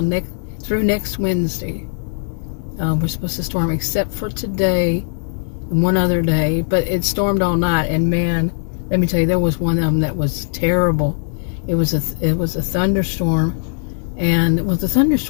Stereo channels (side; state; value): right; silent; digital silence